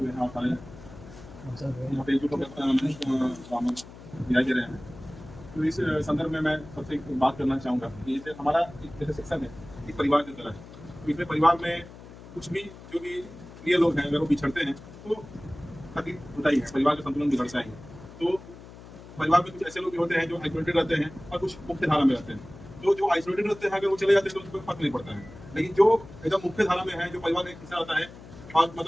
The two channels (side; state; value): left; noise; hum, 17 dB below the sound